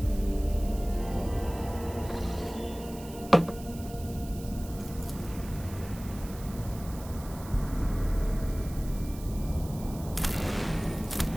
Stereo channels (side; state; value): right; noise; hiss, 17 dB below the sound